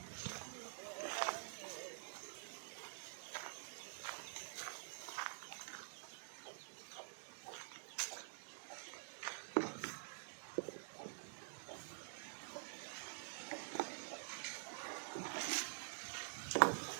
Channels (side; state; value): left; silent; digital silence